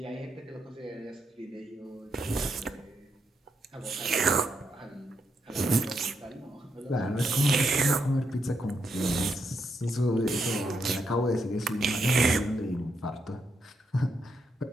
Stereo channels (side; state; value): both; normal; correlation 0.80